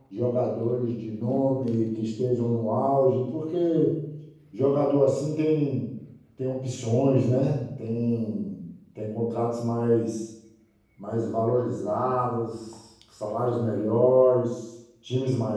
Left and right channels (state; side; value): identical; both; correlation 1.00